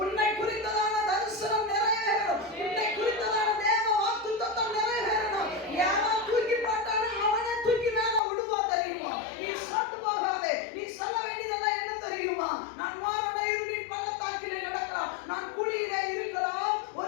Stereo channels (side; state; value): right; drops out; at 8.2 s